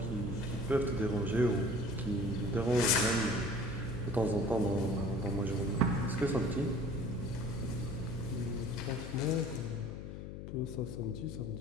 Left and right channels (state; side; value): noise; left; hum, 9 dB below the sound